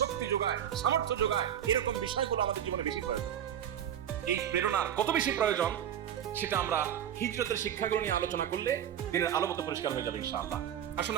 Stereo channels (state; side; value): quieter; left; 10.0 dB